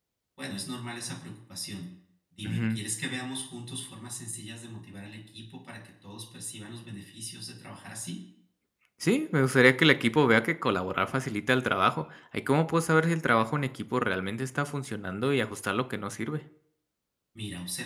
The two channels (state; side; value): identical; both; correlation 1.00